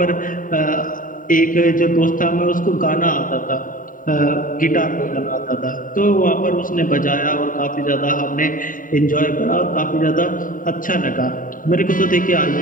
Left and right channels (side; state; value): right; late; 0.39 ms